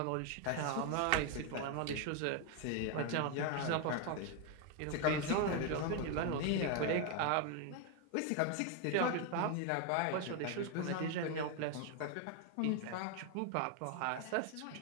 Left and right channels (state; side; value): different; both; correlation 0.01